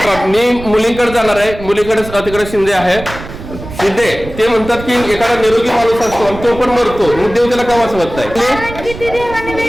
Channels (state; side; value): noise; right; rumble, 13 dB below the sound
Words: मी मुलींकडे जाणार आहे मुलीकडे तिकडे शिंदे आहे शिंदे ते म्हणतात की एखादा निरोगी माणूस असतो आणि तो पण मरतो मग देव त्याला का वाचवत नाही. कारण की ती देवाने